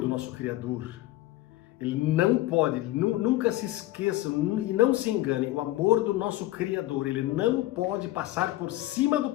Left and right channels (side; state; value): right; quieter; 16.6 dB